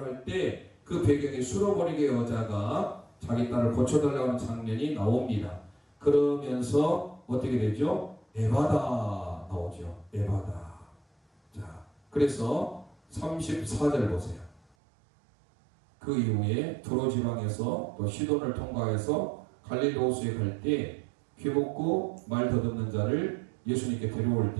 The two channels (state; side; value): drops out; left; at 14.6 s